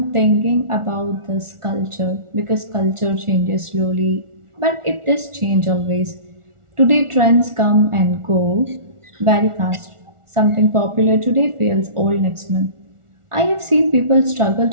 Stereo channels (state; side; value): late; left; 1.4 ms